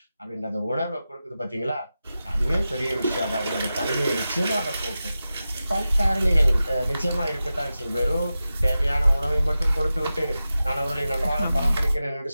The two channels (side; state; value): both; inverted; correlation -0.93